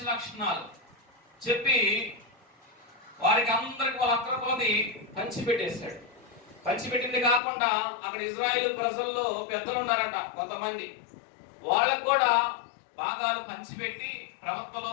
లక్షణాలు చెప్పి వారికి అందరికి వాళ్ళ అక్కర కొలది పంచిపెట్టేశాడు. పంచిపెట్టింది కాకుండా అక్కడ ఇజ్రాయేల్ ప్రజల్లో పెద్దలు ఉన్నారట కొంతమంది, వాళ్ళకు కూడా భాగాలు పంచిపెట్టి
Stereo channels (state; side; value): drops out; right; at 7.4 s